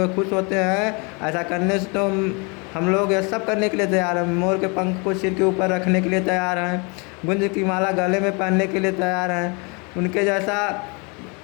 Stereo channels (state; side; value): quieter; right; 31.5 dB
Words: खुश होते हैं ऐसा करने से, तो हम लोग यह सब करने के लिए तैयार हैं। मोर के पंख को सिर के ऊपर रखने के लिए तैयार हैं, गुंज की माला गले में पहनने के लिए तैयार हैं, उनके जैसा